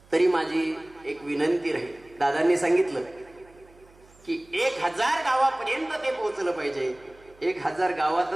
तरी माझी एक विनंती राहील. दादांनी सांगितलं की 1000 गावापर्यंत ते पोहोचलं पाहिजे. 1000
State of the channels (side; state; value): right; noise; hum, 27 dB below the sound